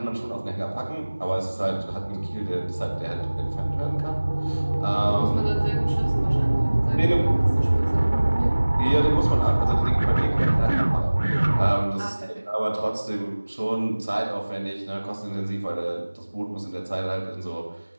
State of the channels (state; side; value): inverted; both; correlation -1.00